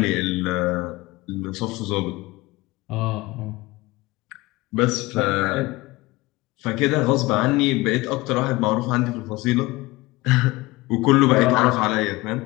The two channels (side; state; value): right; quieter; 20.9 dB